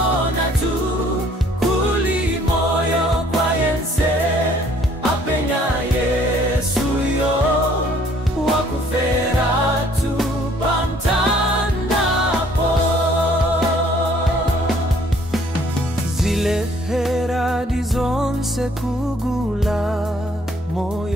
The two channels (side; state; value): both; normal; correlation 0.60